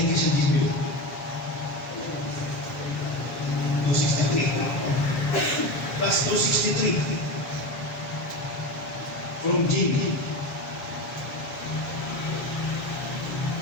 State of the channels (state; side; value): late; right; 8.2 ms